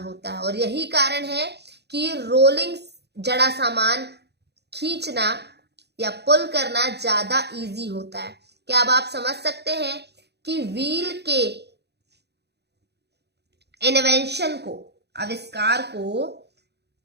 है, और यही कारण है कि रोलिंग जड़ा सामान खींचना या पुल करना ज्यादा इजी होता है। क्या अब आप समझ सकते हैं कि व्हील के इन्वेंशन को, आविष्कार को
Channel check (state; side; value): late; left; 0.48 ms